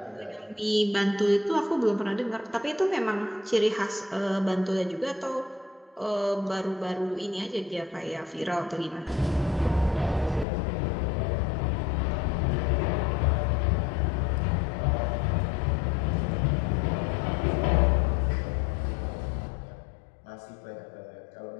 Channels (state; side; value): drops out; right; at 10.5 s